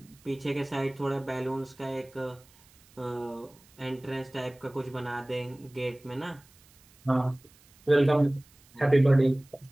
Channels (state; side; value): noise; right; hiss, 28 dB below the sound